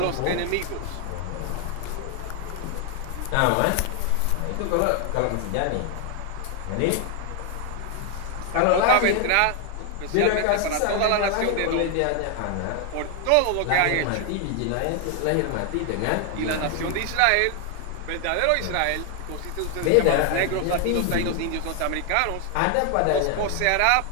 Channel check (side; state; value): both; different; correlation 0.00